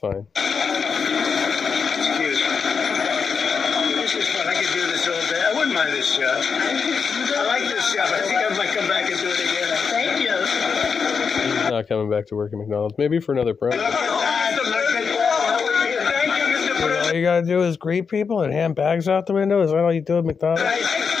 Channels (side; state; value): right; quieter; 5.8 dB